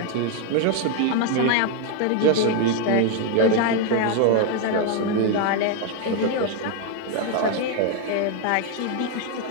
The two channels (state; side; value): different; both; correlation 0.01